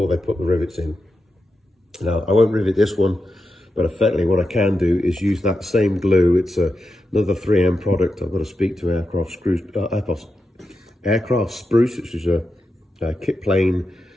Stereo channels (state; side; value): normal; both; correlation 0.88